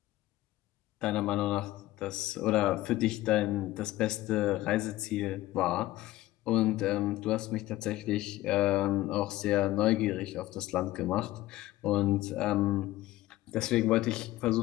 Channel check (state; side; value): quieter; right; 16.7 dB